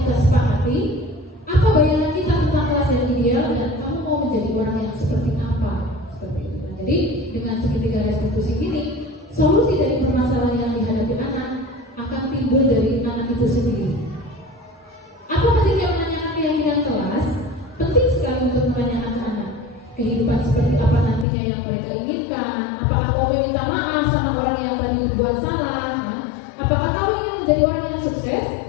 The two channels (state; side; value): drops out; right; at 21.2 s